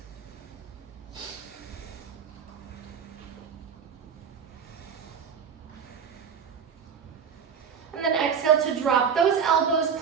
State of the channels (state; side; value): quieter; left; 7.0 dB